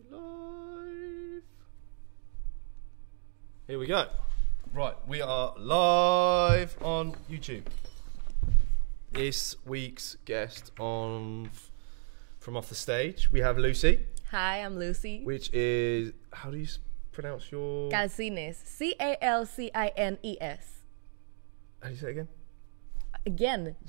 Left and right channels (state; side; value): silent; left; digital silence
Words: live. Here we go. Right, we are live on YouTube. This week's guest from off the stage, we have Lucy. Hi, I'm Lucy. Which is, how do you pronounce your... Calcines. C-A-L-C-I-N-E-S. How do you say it again? Again.